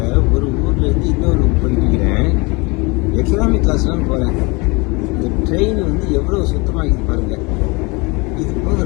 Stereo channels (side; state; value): right; quieter; 27.1 dB